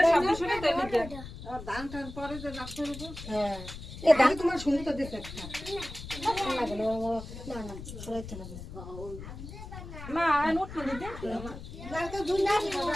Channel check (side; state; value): left; noise; rumble, 12 dB below the sound